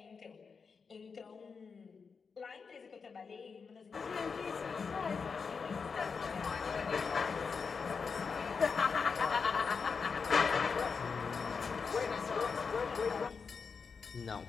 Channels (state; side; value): quieter; right; 5.4 dB